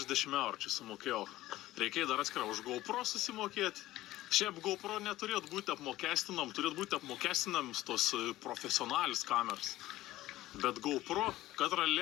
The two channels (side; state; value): right; quieter; 16.1 dB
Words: eurų čia sumokėjau. Reikėjo dar atskirą už GoPro susimokėti. Šiaip GoPro neturėtų būti apmokestinam, turėtų būti apmokestinams tos profesionalis kameras. Bet GoPro, katrą